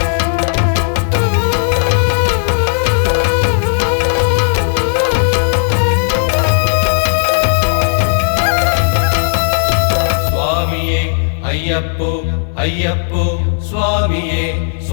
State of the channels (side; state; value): right; silent; digital silence